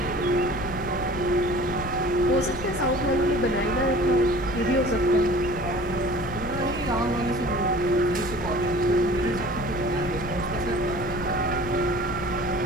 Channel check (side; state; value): left; noise; rumble, 10 dB below the sound